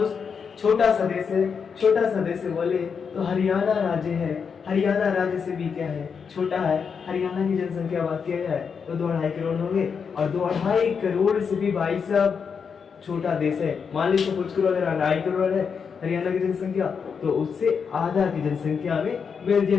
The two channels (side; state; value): right; quieter; 6.2 dB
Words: छोटा सा देश है। छोटा सा देश है बोले तो हरियाणा राज्य है। हरियाणा राज्य से भी क्या है? छोटा है। हरियाणा की जनसंख्या बात किया जाए तो 2.5 करोड़ होंगे, और 2.5 करोड़ से भी भाई साहब छोटा देश है। मान लीजिए कुछ करोड़, अगर 2.5 करोड़ है हरियाणा की जनसंख्या, तो उससे आधा की जनसंख्या में